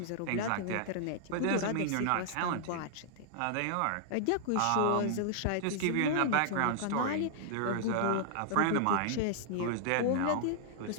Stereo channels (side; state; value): both; different; correlation -0.01